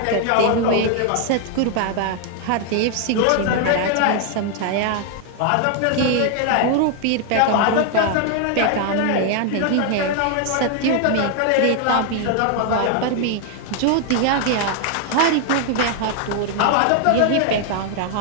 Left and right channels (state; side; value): different; both; correlation 0.00